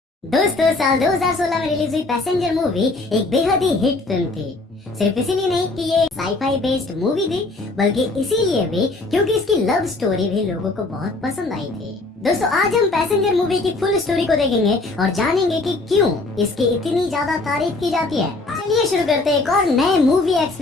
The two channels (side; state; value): right; quieter; 3.2 dB